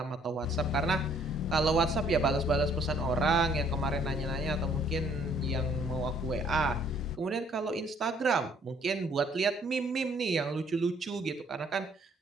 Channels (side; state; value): both; normal; correlation 0.62